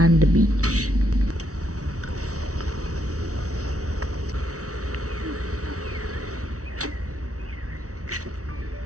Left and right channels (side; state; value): left; late; 0.66 ms